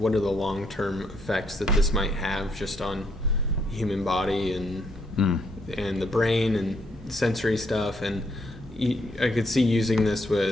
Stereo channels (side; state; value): both; normal; correlation 0.73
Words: are the long-term effects that this might have just on human body and the brain and sensory stuff? And I could see using this